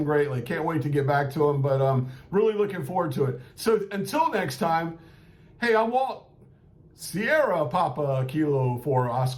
greatly. Can't wait to get back to them, but really looking forward to it. So until next time, hey, I'm Walt. Sierra Papa Kilo for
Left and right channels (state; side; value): identical; both; correlation 1.00